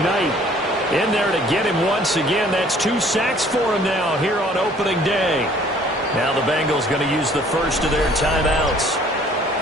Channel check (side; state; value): both; normal; correlation 0.56